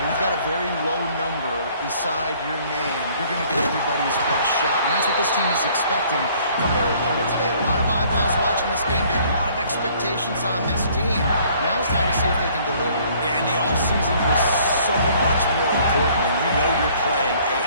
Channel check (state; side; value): inverted; both; correlation -0.59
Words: We've got a very low number beside your name. You're going to get everybody's best shot, and that's what this team is expecting from their opponent today. A lot of eyeballs watching this game, David. A lot of expectations on this team. Now it's time to see if they can deliver. Yeah, and the offseason was so much more important when you know you're playing a